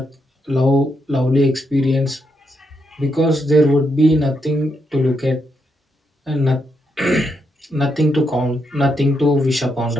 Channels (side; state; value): both; normal; correlation 0.80